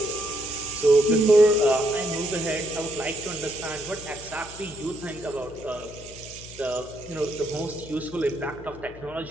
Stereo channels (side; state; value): left; noise; hum, 18 dB below the sound